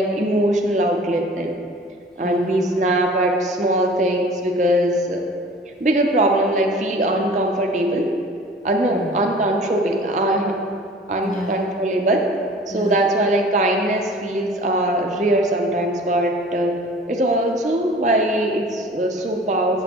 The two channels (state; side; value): normal; both; correlation 0.46